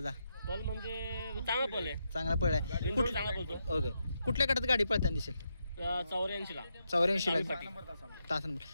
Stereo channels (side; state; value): both; inverted; correlation -0.83